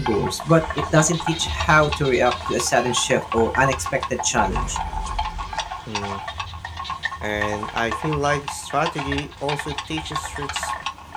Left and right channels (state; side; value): identical; both; correlation 1.00